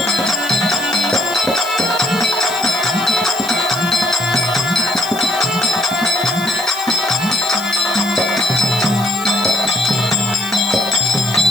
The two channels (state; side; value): noise; left; hiss, 14 dB below the sound